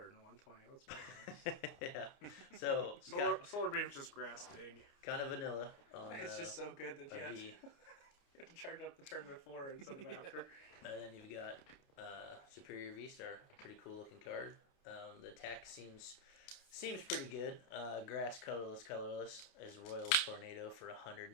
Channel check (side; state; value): right; late; 29 ms